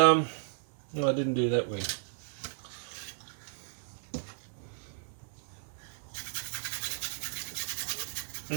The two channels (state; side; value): silent; left; 55 dB below the other